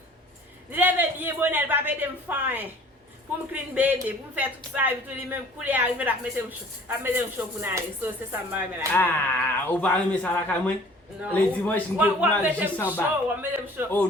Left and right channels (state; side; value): normal; both; correlation 0.50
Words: Lève bien bonne pas péter me faim. Pour me clean bébé, pour me faire tout ça et tout les même couler arriver à mettre un chaud pour aller. So c'est ça m'a aimé la kay. Ah, ou pas aimer ça la kay moi? Les dimanches nous pour mal juste en bas. Oh